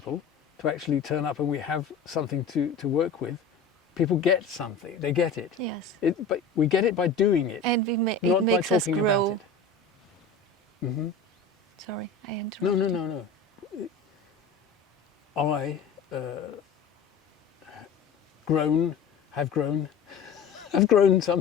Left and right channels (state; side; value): quieter; right; 4.7 dB